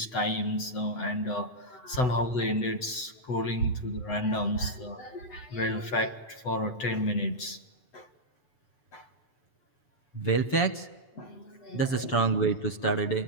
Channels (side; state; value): right; late; 8.0 ms